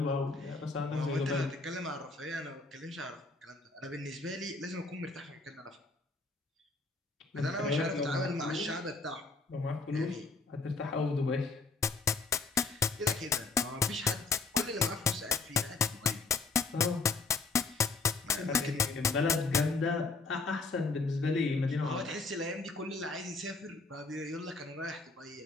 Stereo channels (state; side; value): quieter; right; 3.9 dB